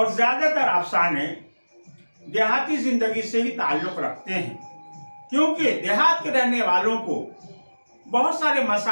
ज्यादातर अफसाने देहाती जिंदगी से ही ताल्लुक रखते हैं, क्योंकि देहात के रहने वालों को बहुत सारे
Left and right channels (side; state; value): both; inverted; correlation -1.00